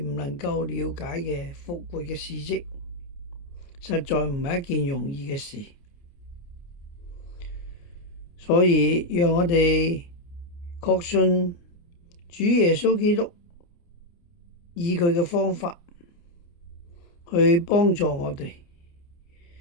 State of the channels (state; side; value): late; right; 29 ms